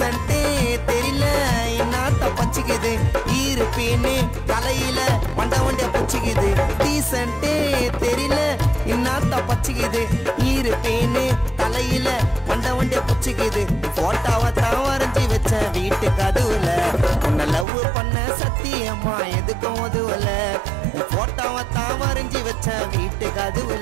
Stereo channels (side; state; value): left; drops out; at 17.7 s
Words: தெரியல என்னத்த பச்சிக்குது இருப்பேன்னு தலையில வண்டிய பச்சிக்குது டீசன்ட்டே தெரியல என்னத்த பச்சிக்குது இருப்பேன்னு தலையில வண்டிய பச்சிக்குது போட்டோவை தான் வரைஞ்சி வச்ச வீட்டு கதுவுல உன்னை லவ் பண்ண சத்தியம்மா எதுக்கும் உதவல போட்டோவை தான் வரைஞ்சி வச்ச வீட்டு